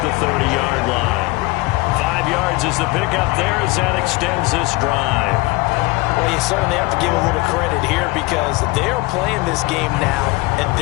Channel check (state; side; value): quieter; right; 22.8 dB